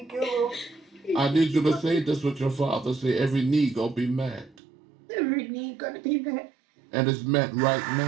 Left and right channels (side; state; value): left; drops out; at 4.5 s